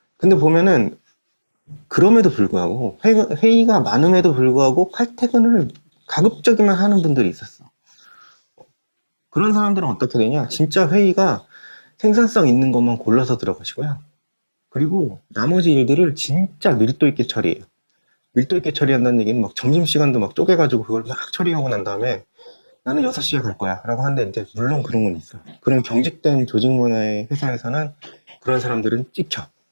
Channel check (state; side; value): inverted; both; correlation -1.00